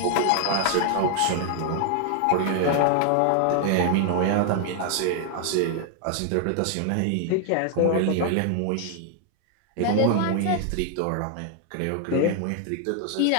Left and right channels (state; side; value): different; both; correlation 0.00